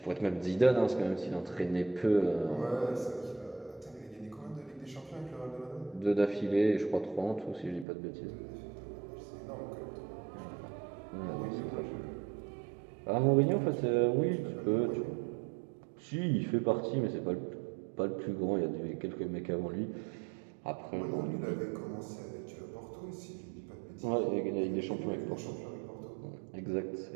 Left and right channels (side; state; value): left; drops out; at 7.9 s